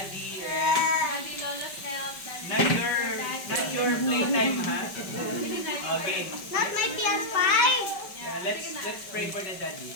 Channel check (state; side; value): late; right; 5.2 ms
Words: Daddy Lolo's help. Not your playtime, ha? Okay. Not my PS5. Let's pray for the daddy.